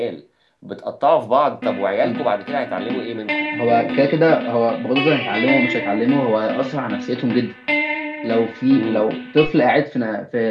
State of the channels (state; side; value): identical; both; correlation 1.00